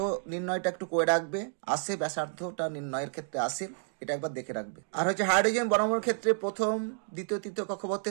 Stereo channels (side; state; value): left; silent; 58 dB below the other